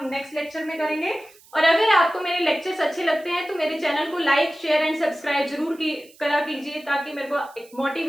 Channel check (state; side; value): noise; right; hiss, 26 dB below the sound